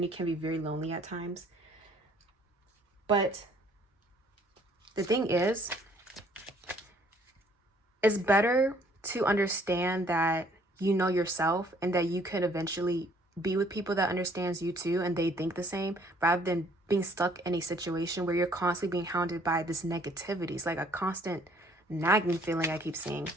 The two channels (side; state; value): both; normal; correlation 0.61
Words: can be very lonely at times, but the thing is, it's better to understand that you know yourself and that you could eventually be with people that understands you too and they think the same, rather than being stuck in a situation where you're constantly being hounded by this negativity. It's like a constant nagging feeling I keep seeing.